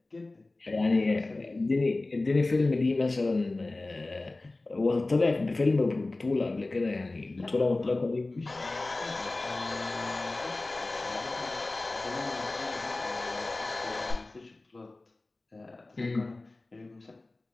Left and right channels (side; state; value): right; quieter; 3.1 dB